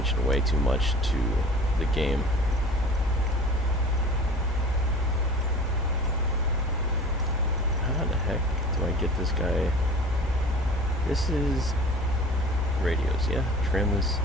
way too much to the game. How the heck do I get this guy? This is radios, yeah. Trim is,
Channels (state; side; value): normal; both; correlation 0.42